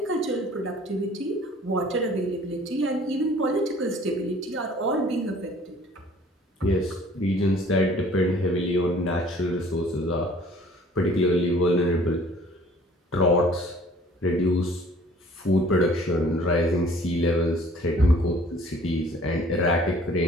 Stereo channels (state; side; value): normal; both; correlation 0.53